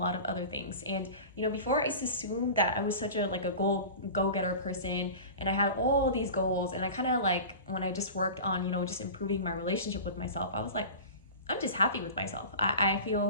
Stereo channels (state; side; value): inverted; both; correlation -0.34